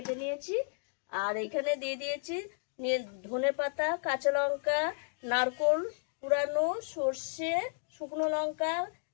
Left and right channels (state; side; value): silent; right; 56 dB below the other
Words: নিয়েছি। আর এখানে দিয়ে দিয়েছি ধনে পাতা, কাঁচা লঙ্কা, নারকোল কুড়ানো, সর্ষে, শুকনো লঙ্কা,